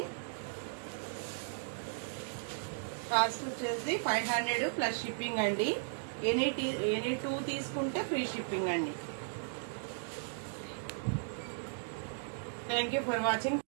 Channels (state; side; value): silent; left; digital silence